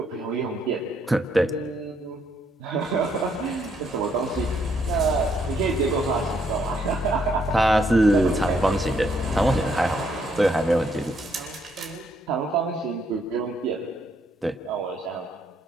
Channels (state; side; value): normal; both; correlation 0.72